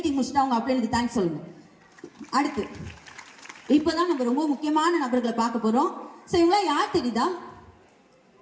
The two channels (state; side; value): identical; both; correlation 1.00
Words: முடிச்சுட்டு அவங்க அப்ளைனுக்கு தேங்க்ஸ் சொல்லுங்க. அடுத்து இப்போதான் நம்ம ரொம்ப முக்கியமான நபர்களை பார்க்க போறோம். ஸோ இவங்களாம் யார் தெரியுதா?